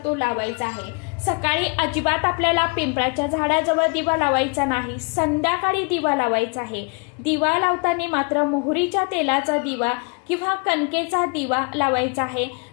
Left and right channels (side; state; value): right; quieter; 34.5 dB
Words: तो लावायचा आहे. सकाळी अजिबात आपल्याला पिंपळाच्या झाडाजवळ दिवा लावायचा नाही, संध्याकाळी दिवा लावायचा आहे. दिवा लावताना मात्र मोहरीच्या तेलाचा दिवा किंवा कणकेचा दिवा लावायचा आहे.